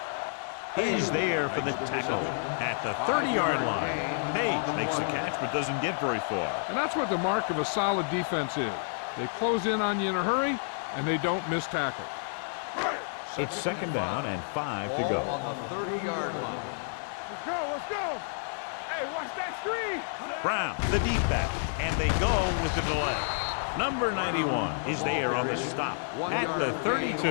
is there for the tackle at the 30-yard line. Page makes the catch but doesn't get very far. And that's what the mark of a solid defense is. They close in on you in a hurry, and they don't miss tackle. It's second down and 5 to go. Ball on the 30-yard line. Let's go, let's go. Hey, watch that screen. Brown, the deep back, and they go with the delay. Number 91 is there on the stop at the 32.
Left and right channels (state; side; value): silent; right; 58 dB below the other